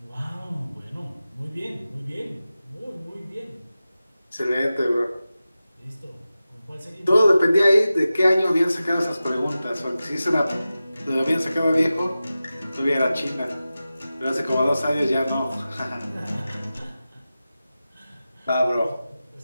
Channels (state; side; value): inverted; both; correlation -0.94